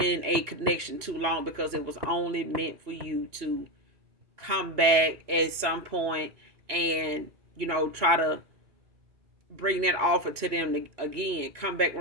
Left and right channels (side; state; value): left; late; 2.8 ms